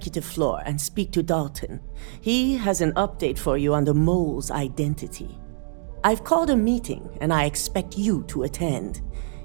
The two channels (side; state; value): left; silent; digital silence